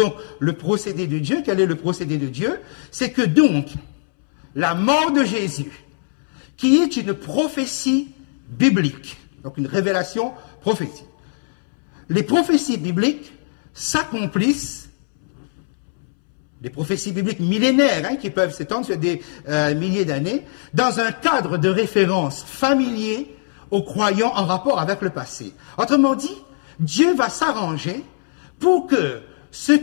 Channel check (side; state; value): right; silent; 65 dB below the other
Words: le procédé de Dieu. Quel est le procédé de Dieu? C'est que donc, la mort de Jésus, qui est une prophétie biblique, donc une révélation prophétique. Les prophéties bibliques s'accomplissent, les prophéties bibliques millénaires, qui peuvent s'étendre sur des milliers d'années, dans un cadre de référence familier aux croyants en rapport avec le passé. Autrement dit, Dieu va s'arranger pour que ce